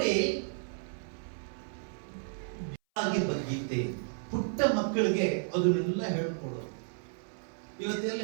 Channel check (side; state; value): left; silent; 56 dB below the other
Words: ಗೀತೆ ಪುಟ್ಟ ಮಕ್ಕಳಿಗೆ ಅದನ್ನೆಲ್ಲ ಹೇಳ್ಕೊಡು. ಇವತ್ತೆಲ್ಲ